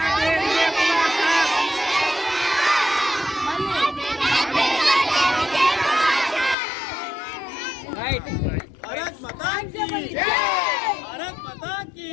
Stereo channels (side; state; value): right; drops out; at 6.6 s